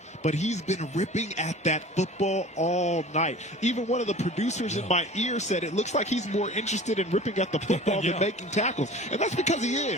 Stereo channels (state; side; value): normal; both; correlation 0.41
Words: but he's been ripping at that football all night. Even one of the producers in my ear said it looks like he's more interested in ripping at the football than making tackles. And that's because he